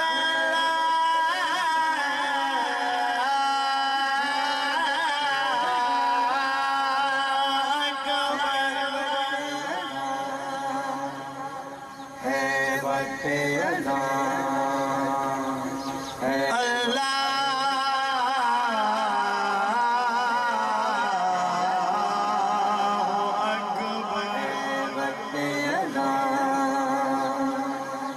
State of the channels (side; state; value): both; identical; correlation 1.00